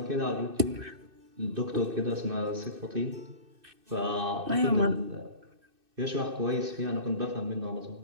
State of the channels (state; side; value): late; left; 2.6 ms